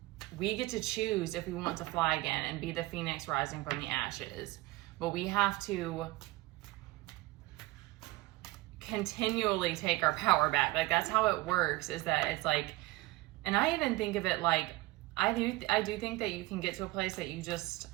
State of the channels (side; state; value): left; quieter; 20.0 dB